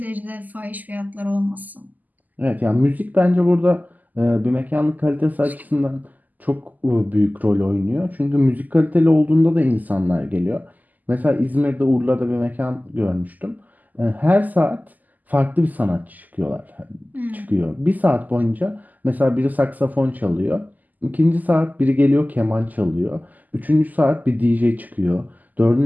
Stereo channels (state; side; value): late; left; 0.082 ms